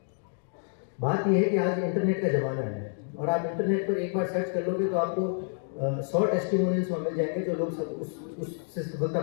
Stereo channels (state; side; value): silent; right; 59 dB below the other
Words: बात यह है कि आज इंटरनेट का ज़माना है और आप इंटरनेट पर एक बार सर्च कर लोगे तो आपको 100 टेस्टिमोनियल्स मिल जाएंगे जो लोग उससे सफलता